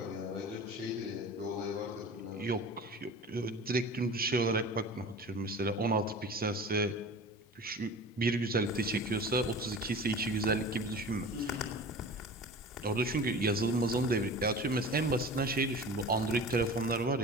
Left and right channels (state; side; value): normal; both; correlation 0.37